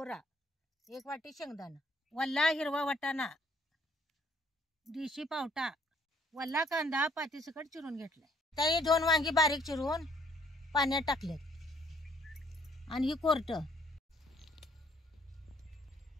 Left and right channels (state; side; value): normal; both; correlation 0.64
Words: एक वाटी शेंगदाणा, वल्ला हिरवा वाटाणा, देशी पावटा, वल्ला कांदा पातीसकट चिरून घेतलाय. त्याही 2 वांगी बारीक चिरून पाण्यात टाकलेत. आणि ही कोरट.